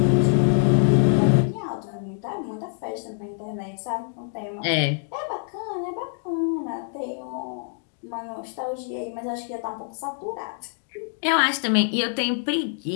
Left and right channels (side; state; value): right; silent; digital silence